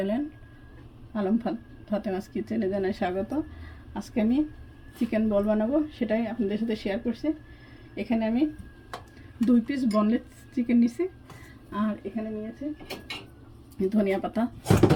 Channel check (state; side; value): identical; both; correlation 1.00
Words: Alam Fatema's কিচেনে জানাই স্বাগত। আজকে আমি চিকেন বল বানাবো, সেটাই আপনাদের সাথে শেয়ার করছি। এখানে আমি 2 পিস বনলেস চিকেন নিছি, আর এখানে নিয়েছি